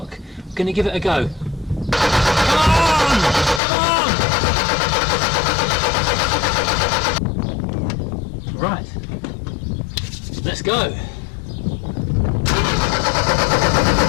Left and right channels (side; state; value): right; drops out; at 3.6 s